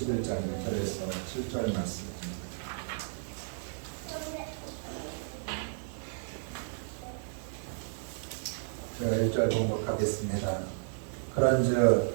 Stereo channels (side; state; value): left; silent; digital silence